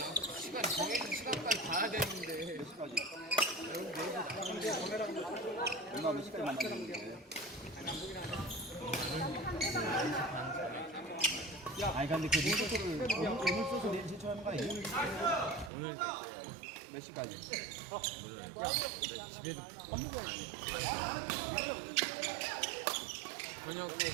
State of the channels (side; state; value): left; drops out; at 15.7 s